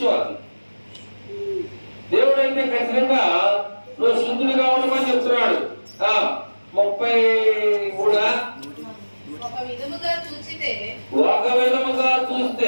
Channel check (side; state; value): both; inverted; correlation -1.00